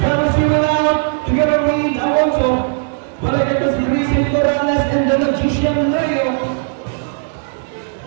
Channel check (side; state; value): left; silent; digital silence